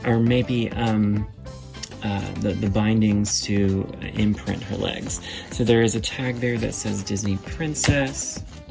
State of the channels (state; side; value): identical; both; correlation 1.00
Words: Or maybe the bindings to imprint her legs. So there is a tag there that says Disney Princess.